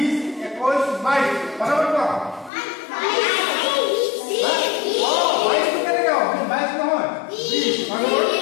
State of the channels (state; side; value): drops out; right; at 2.5 s